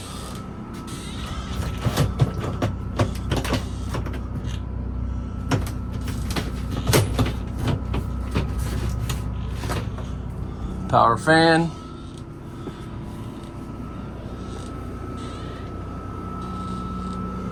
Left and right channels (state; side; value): identical; both; correlation 1.00